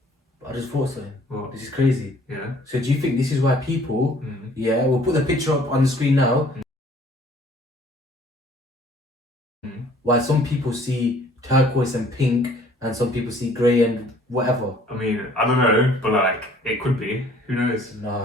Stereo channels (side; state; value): both; normal; correlation 0.56